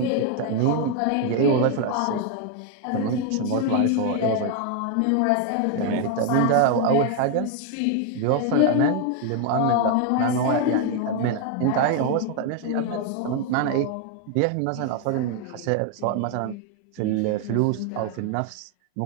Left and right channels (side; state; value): both; different; correlation 0.01